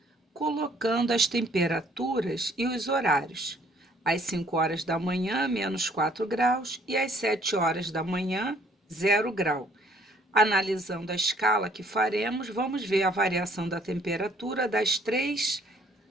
colocando as temperaturas e os horários. Às 5 horas da manhã, menos 4 graus, e às 7 horas da manhã, 0 grau. Analisando a escala que faremos, vamos ver a variação da temperatura das 3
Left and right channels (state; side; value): normal; both; correlation 0.61